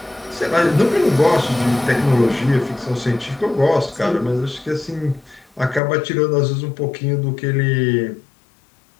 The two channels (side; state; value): right; drops out; at 5.8 s